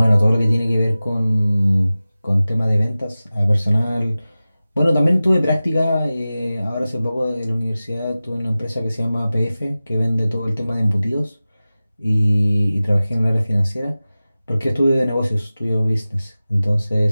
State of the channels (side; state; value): both; inverted; correlation -0.96